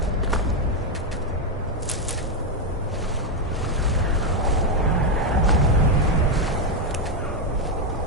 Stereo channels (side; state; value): both; normal; correlation 0.05